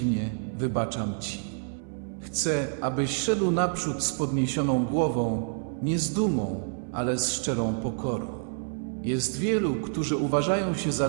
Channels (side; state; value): left; silent; 59 dB below the other